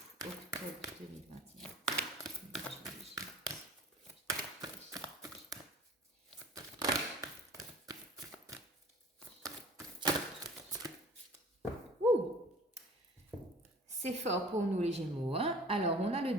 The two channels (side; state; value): both; normal; correlation 0.45